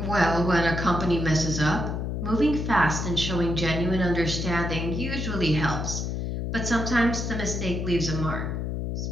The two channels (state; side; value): noise; left; hum, 2 dB below the sound